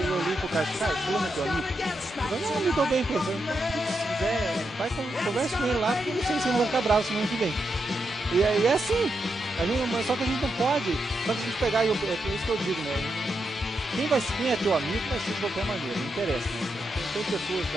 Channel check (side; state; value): both; normal; correlation 0.84